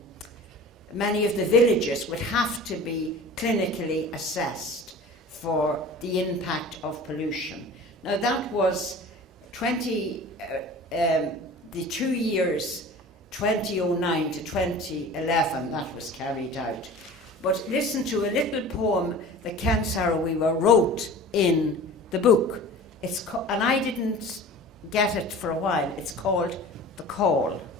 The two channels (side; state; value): both; normal; correlation 0.39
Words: villages would have to be clinically assessed for the impact of pollution. Now that was the 2 years 2009 to 2011 that was carried out. But listen to a little poem that Ken Saro Wiwa wrote in the book. And I didn't get it for a while. It's called The Call.